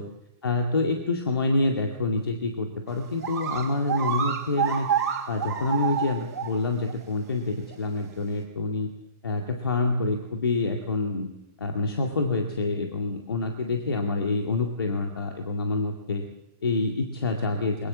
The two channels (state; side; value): inverted; both; correlation -0.52